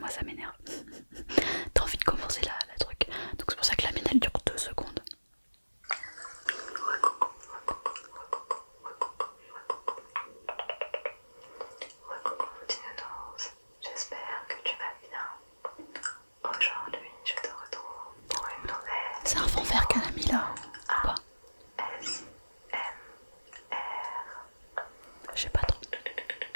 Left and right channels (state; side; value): inverted; both; correlation -1.00